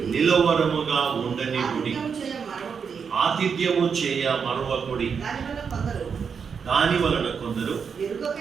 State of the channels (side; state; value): left; quieter; 6.3 dB